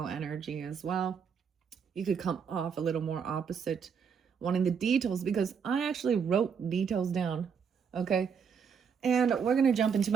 energy as well. You could come off a little more opposite, wanting the details, because I actually wrote details down. Okay, and we're gonna jump into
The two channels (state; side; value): quieter; left; 6.7 dB